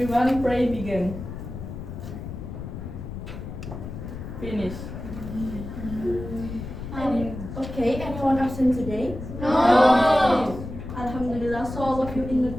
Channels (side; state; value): left; noise; rumble, 9 dB below the sound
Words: pray begin. Finish. Okay, anyone absent today? No. Alhamdulillah, so all of you in a